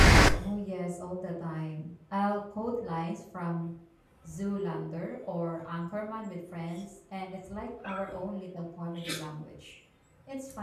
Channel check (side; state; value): both; identical; correlation 1.00